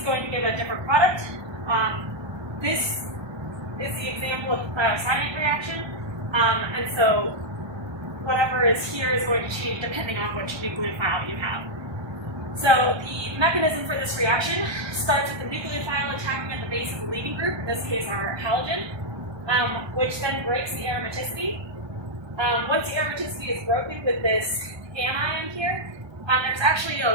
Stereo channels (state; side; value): late; left; 1.2 ms